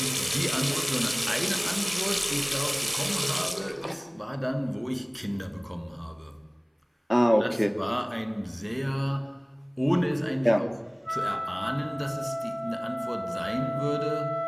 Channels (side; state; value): both; identical; correlation 1.00